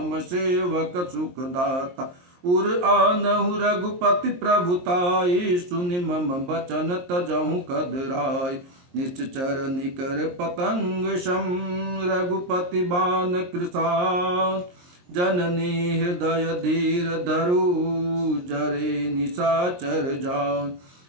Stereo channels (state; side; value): late; left; 23 ms